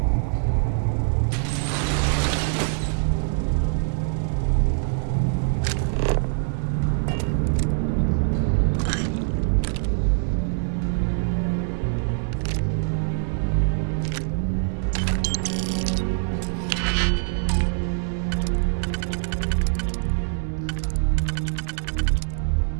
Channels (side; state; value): left; silent; digital silence